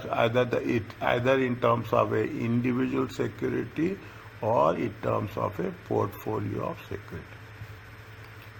either in terms of a individual security or in terms of a portfolio of security.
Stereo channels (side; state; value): both; identical; correlation 1.00